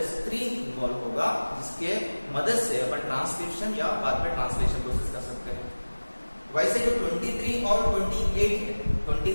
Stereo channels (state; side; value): inverted; both; correlation -1.00